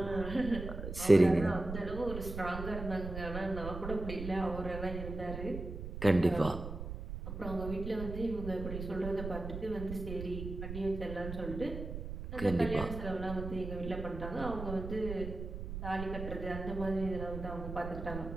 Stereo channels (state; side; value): noise; right; rumble, 7 dB below the sound